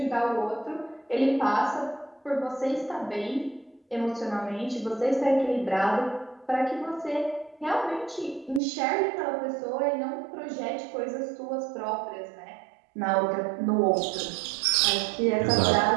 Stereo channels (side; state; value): left; drops out; at 8.6 s